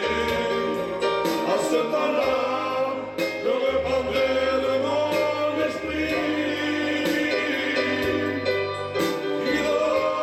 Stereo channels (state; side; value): identical; both; correlation 1.00